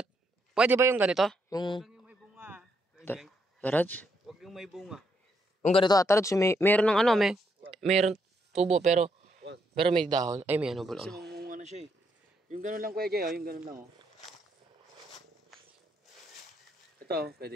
Pwede ba yung ganito? Yung... Huwag yung may bunga. Tatarods? Huwag yung may bunga. Yung ganito, Tatarods, meron ng ano, meron tubo, pero may dahon. Ay, may ano, Kasi bulaklak. mamunga na siya eh. Yung gano'n lang kuya Jay, oh. Yung gano'n lang oh. Ito, pwede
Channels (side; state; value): both; normal; correlation 0.76